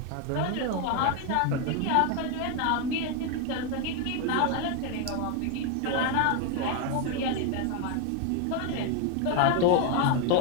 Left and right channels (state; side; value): different; both; correlation 0.01